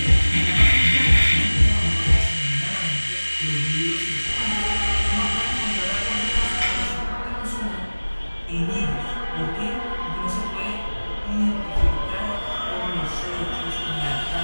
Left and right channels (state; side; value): inverted; both; correlation -1.00